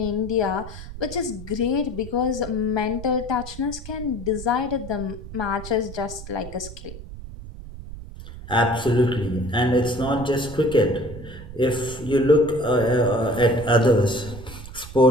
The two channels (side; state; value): right; noise; rumble, 13 dB below the sound